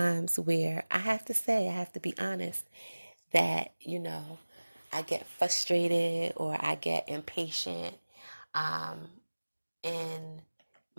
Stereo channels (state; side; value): inverted; both; correlation -1.00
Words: where I have to be honest, that, I get frustrated or I get impatient in